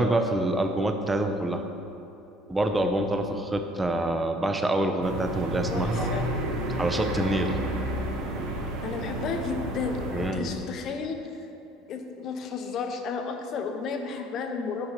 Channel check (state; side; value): normal; both; correlation 0.59